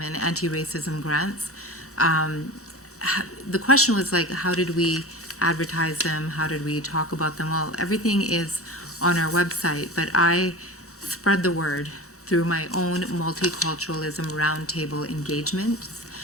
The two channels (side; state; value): both; normal; correlation 0.32